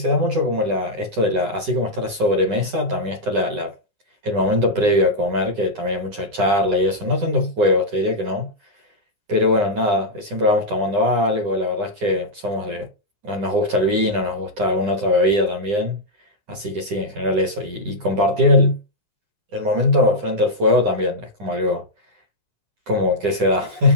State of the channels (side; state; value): left; late; 9.8 ms